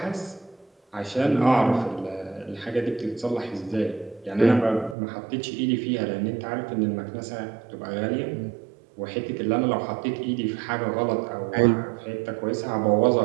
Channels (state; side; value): drops out; left; at 5.0 s